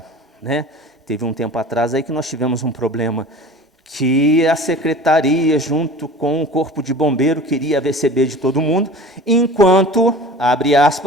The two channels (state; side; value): normal; both; correlation 0.40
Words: né? Teve um tempo atrás aí que nós tivemos um problema que a secretaria, junto com o corpo de bombeiro, queria receber de todo mundo, enquanto, abre